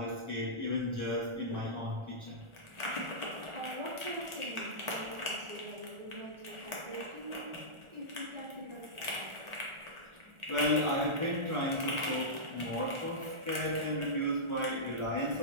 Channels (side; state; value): left; late; 1.4 ms